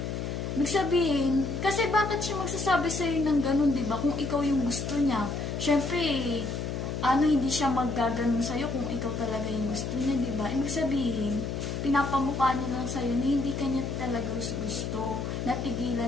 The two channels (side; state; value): left; noise; hum, 4 dB below the sound